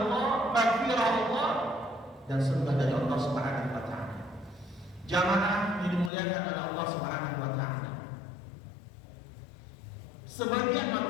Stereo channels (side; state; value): right; drops out; at 6.1 s